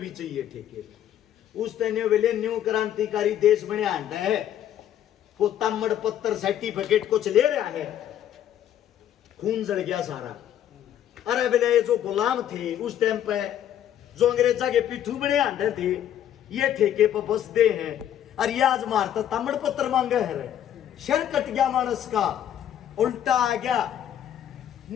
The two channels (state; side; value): quieter; right; 10.7 dB